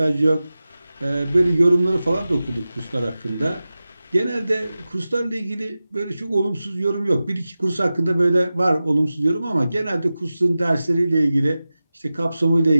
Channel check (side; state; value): both; inverted; correlation -0.95